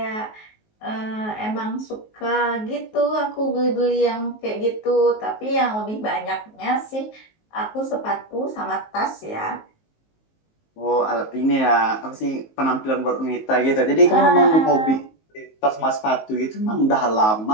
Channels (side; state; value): right; late; 19 ms